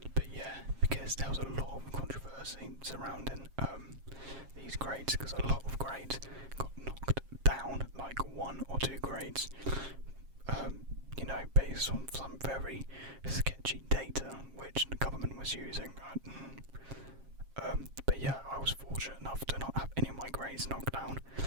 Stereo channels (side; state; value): left; late; 7.4 ms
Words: But yeah, because there was a lot of controversy surrounding these grades, because a lot of grades got knocked down, like 1 or 2 grades, based on some very sketchy data which the government was using. But yeah, I was fortunate enough to not have any of my grades knocked down.